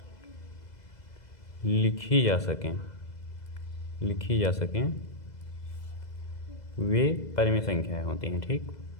लिखी जा सकें वे परिमेय संख्याएं होती हैं। ठीक,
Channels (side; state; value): right; late; 2.0 ms